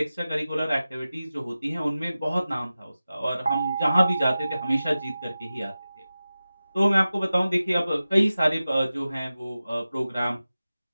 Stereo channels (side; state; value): both; inverted; correlation -0.95